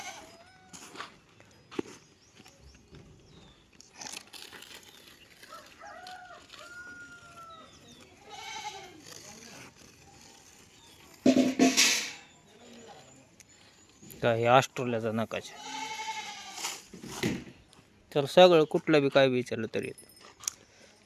काय ऑस्ट्रेलियाचा नकाशा. तर सगळं कुठलं बी काय विचारलं तरी येतं.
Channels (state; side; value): identical; both; correlation 1.00